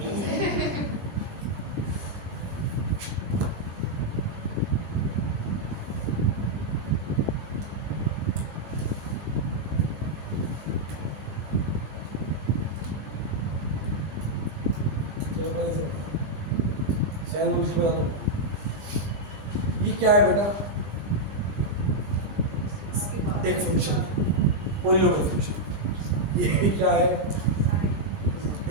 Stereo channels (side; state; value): left; late; 20 ms